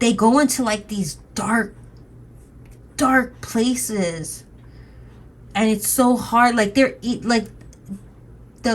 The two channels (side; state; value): both; identical; correlation 1.00